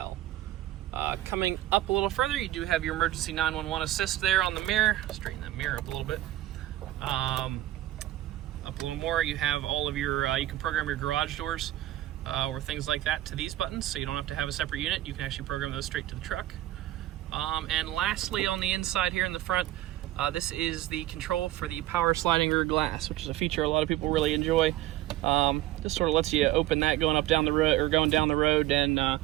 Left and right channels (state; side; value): quieter; left; 15.0 dB